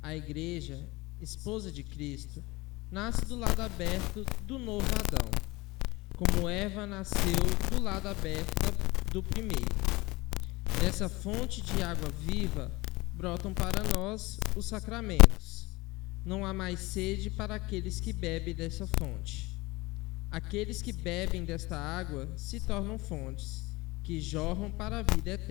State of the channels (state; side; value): quieter; right; 22.0 dB